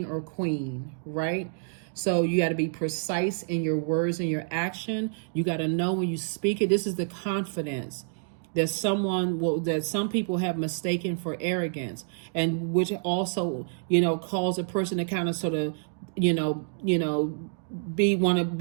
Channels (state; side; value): silent; left; digital silence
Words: or queen, right? So you got to be precise in your words and your action. You got to know when you speak it. This is the confidence that some people have mistaken for arrogance, and which also, cause a person to kind of sort of, want to